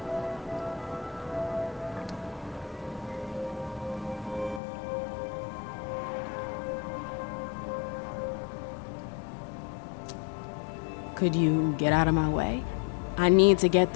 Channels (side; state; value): right; drops out; at 4.6 s